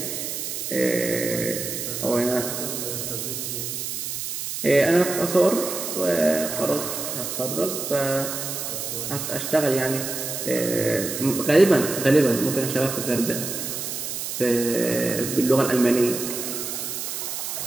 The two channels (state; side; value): noise; right; hiss, 5 dB below the sound